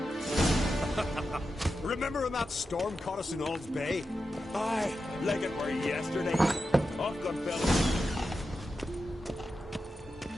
Remember when that storm caught us in Ald's Bay? Aye, like it were yesterday. Off gun fellas.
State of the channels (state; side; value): normal; both; correlation 0.90